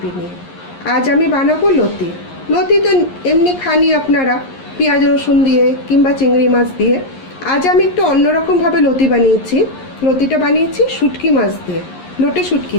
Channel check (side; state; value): right; late; 11 ms